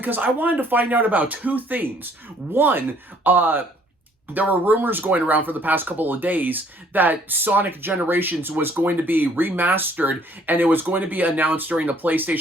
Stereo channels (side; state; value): both; normal; correlation 0.61